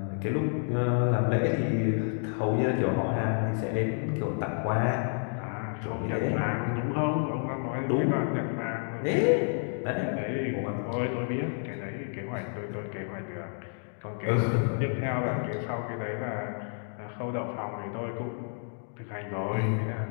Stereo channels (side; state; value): right; silent; 58 dB below the other